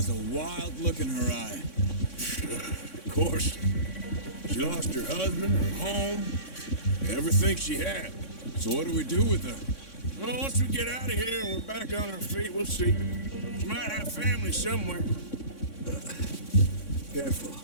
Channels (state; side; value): late; right; 3.6 ms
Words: a wild look in her eye. Of course. She lost her husband, her home, everything she had. So what do we do with her? Well, once we get out of here and we're back on our feet, we'll see. She might have family somewhere. Careful.